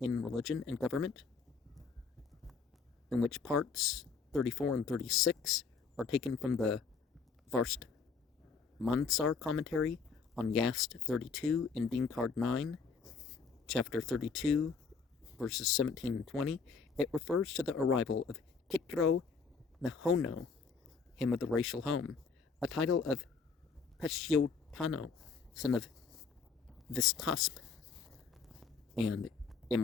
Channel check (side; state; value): right; quieter; 5.1 dB